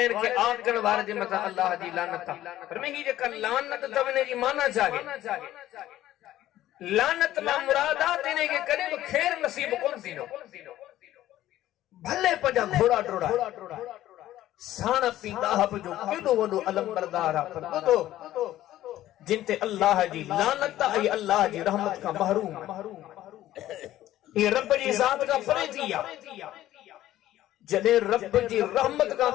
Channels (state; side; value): quieter; right; 13.9 dB